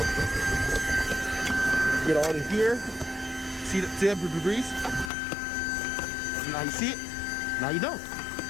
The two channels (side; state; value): right; drops out; at 5.1 s